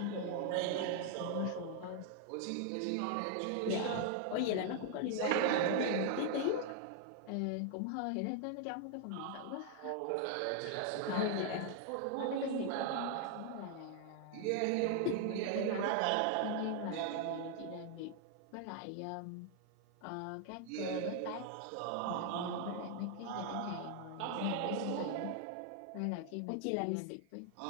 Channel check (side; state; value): both; different; correlation 0.00